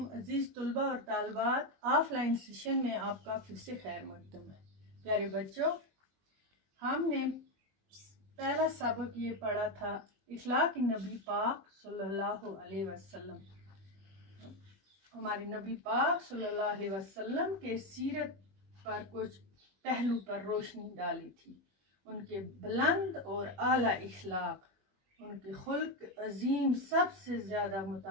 अजीज तलबा और तालबात, ऑफलाइन सेशन में आपका फिर से खैर मकदम है। प्यारे बच्चों, हमने पहला सबक ये पढ़ा था इखलाक नबी पाक सल्लल्लाहु अलैहि वसल्लम। हमारे नबी पाक सल्लल्लाहु अलैहि वसल्लम के सीरत पर कुछ पहलू पर रोशनी डाली थी। उनके बुलंद और आला इखलाक, उनके खुल्क अजीम सबसे ज़्यादा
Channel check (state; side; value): late; left; 21 ms